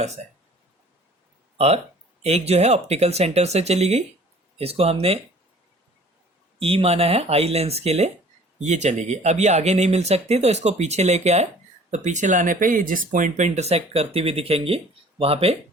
है। और एक जो है ऑप्टिकल सेंटर से चली गई, इसको हमने ई माना है आई लेंस के लिए, ये चली गई। अब ये आगे नहीं मिल सकती तो इसको पीछे लेके आए, तो पीछे लाने पे ये जिस पॉइंट पे इंटरसेक्ट करती हुई दिखेंगी वहां पे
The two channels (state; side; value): normal; both; correlation 0.50